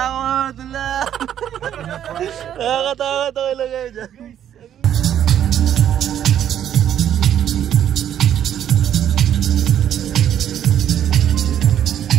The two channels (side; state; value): left; quieter; 10.2 dB